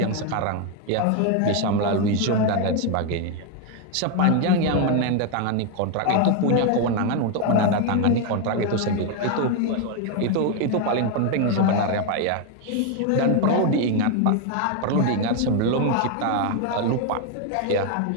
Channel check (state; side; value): different; both; correlation 0.01